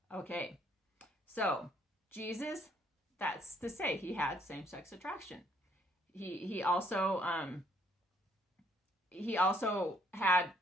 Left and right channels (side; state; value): both; normal; correlation 0.66